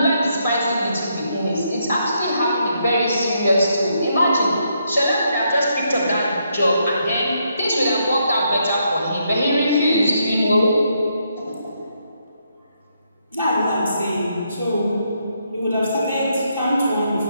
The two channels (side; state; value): both; inverted; correlation -0.77